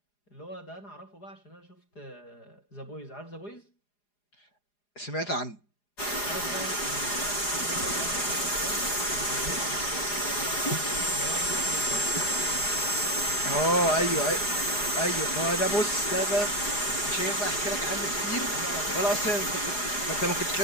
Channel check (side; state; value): right; late; 4.9 ms